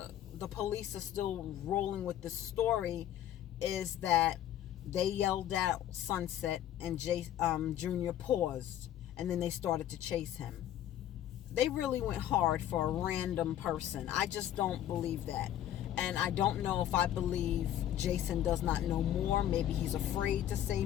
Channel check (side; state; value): right; quieter; 11.5 dB